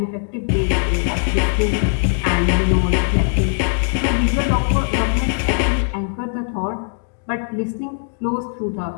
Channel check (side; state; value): right; silent; 59 dB below the other